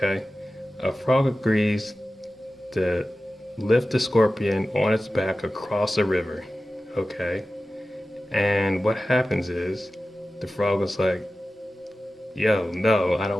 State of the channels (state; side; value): normal; both; correlation 0.95